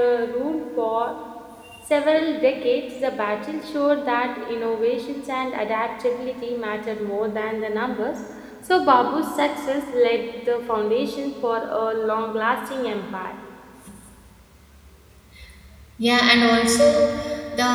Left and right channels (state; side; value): identical; both; correlation 1.00